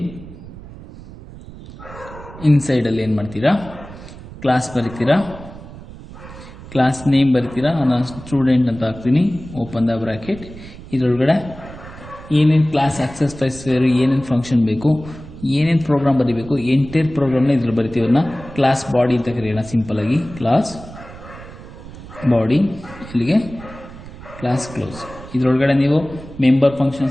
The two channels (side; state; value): right; noise; rumble, 16 dB below the sound